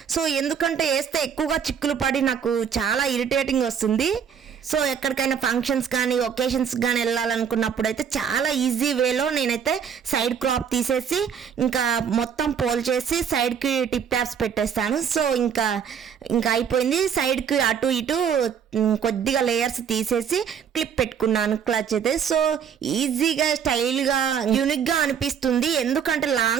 సో ఎందుకంటే వేస్తే ఎక్కువగా చిక్కులు పడి నాకు చాలా ఇరిటేటింగ్ వస్తుంది. సో ఎక్కడికైనా ఫంక్షన్స్ కానీ ఒకేషన్స్ కానీ వెళ్ళాలనుకున్నప్పుడు అయితే చాలా ఈజీ వేలో నేనైతే సైడ్ క్రాప్ తీసేసి ఇంకా మొత్తం పోల్ చేసి సైడ్కి టిప్ ట్యాప్స్ పెట్టేస్తాను. సో ఇంకా అయిపోయింది. సైడ్కి అటు ఇటు కొద్దిగా లేయర్స్ తీసేసి క్లిప్ పెట్టుకున్నాను క్లచ్ అయితే. సో ఈజీగా స్టైల్గా యూనిక్గా అనిపిస్తుంది. ఎందుకంటే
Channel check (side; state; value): left; quieter; 7.6 dB